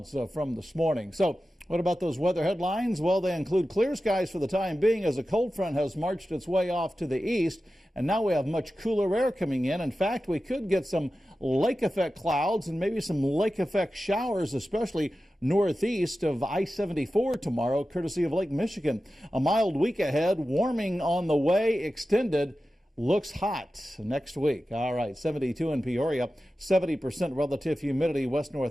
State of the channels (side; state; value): both; normal; correlation 0.93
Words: from this morning. So what about those weather headlines? Well, they include clear skies for the time being as a cold front has marched its way off to the east. And now we have much cooler air coming in. In fact, we could get some lake effect clouds and maybe some lake effect showers, especially northeast of I-74 tomorrow, courtesy of Lake Michigan. A mild week ahead, warming on the way, extended. Looks hot next week. All right, 72 in Peoria, 70% relative humidity,